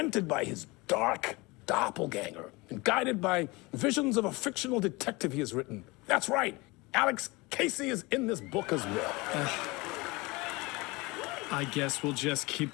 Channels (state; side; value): quieter; right; 24.0 dB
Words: by his dark doppelganger and guided by visions of a fictional detective he has written. That's right, Alex Casey is in this book as well. I guess we'll just keep